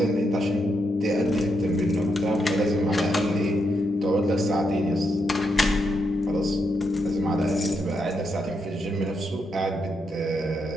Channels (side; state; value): both; normal; correlation 0.80